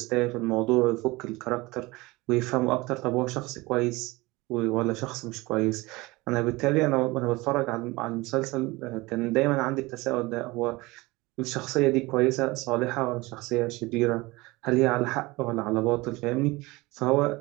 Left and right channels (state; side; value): quieter; left; 22.1 dB